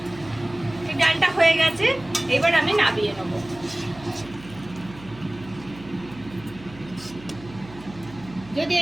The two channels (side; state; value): right; noise; hum, 19 dB below the sound